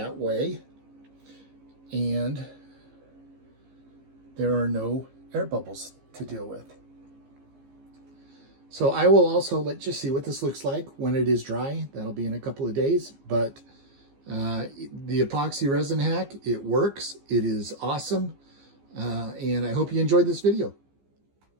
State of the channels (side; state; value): left; late; 15 ms